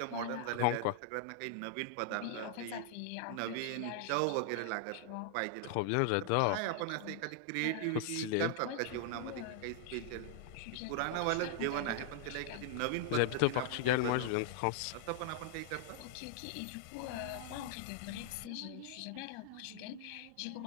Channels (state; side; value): different; both; correlation 0.00